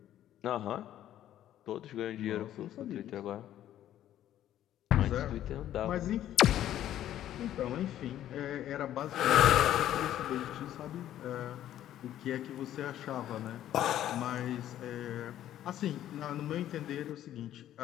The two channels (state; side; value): quieter; right; 12.0 dB